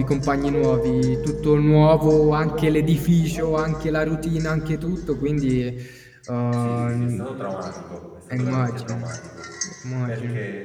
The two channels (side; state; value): both; identical; correlation 1.00